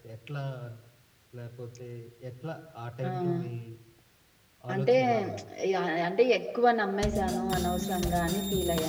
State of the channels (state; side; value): identical; both; correlation 1.00